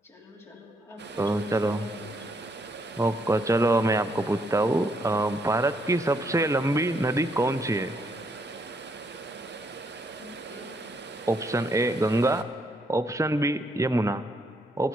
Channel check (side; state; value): both; normal; correlation 0.73